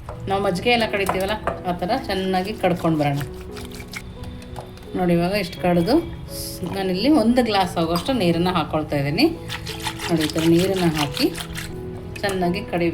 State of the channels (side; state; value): both; identical; correlation 1.00